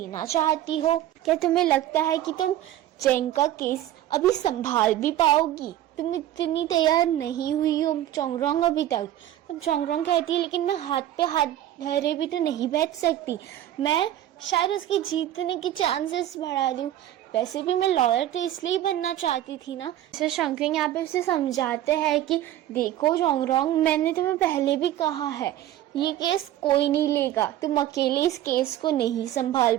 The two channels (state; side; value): quieter; left; 12.8 dB